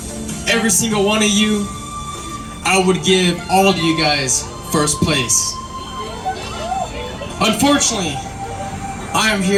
every single one of you, I would give all of you guys first place. Unfortunately, I am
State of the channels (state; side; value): identical; both; correlation 1.00